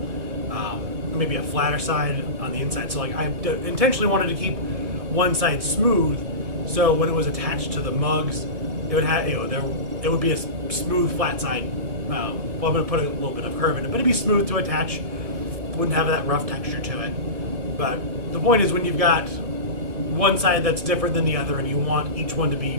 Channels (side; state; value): left; late; 1.6 ms